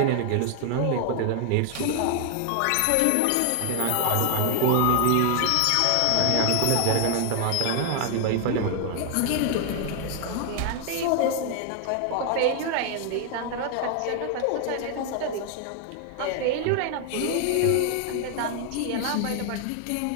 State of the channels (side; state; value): both; different; correlation 0.00